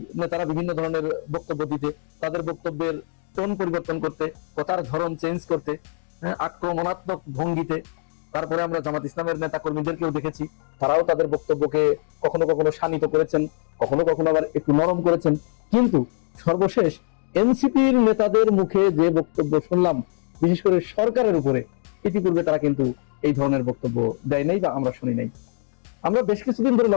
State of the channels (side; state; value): right; silent; digital silence